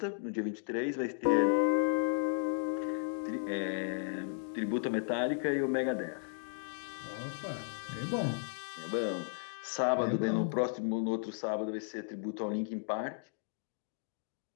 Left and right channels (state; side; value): silent; right; digital silence